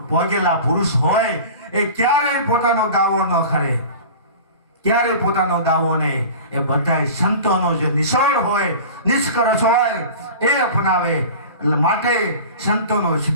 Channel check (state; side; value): inverted; both; correlation -0.37